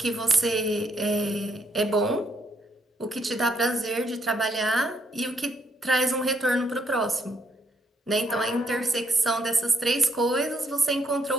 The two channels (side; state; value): both; normal; correlation 0.74